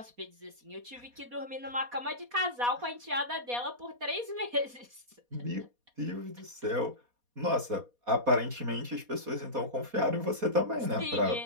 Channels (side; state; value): left; late; 4.2 ms